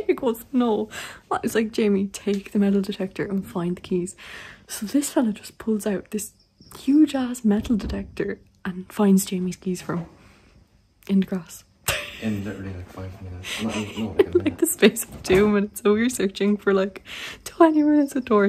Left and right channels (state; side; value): identical; both; correlation 1.00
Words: goes, no. I was like, Jamie, take the metal detector and find the keys. So this fella just pulls out this huge ass metal detector and finds Jamie's keys from in the grass. In literally like 5 minutes. No, like, like the space of 2 minutes. So we were searching for like 20 minutes of